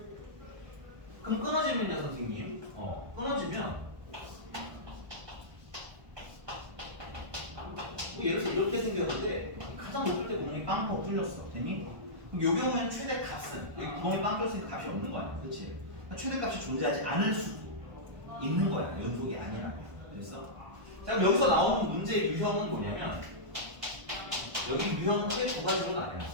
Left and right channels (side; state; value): left; late; 1.3 ms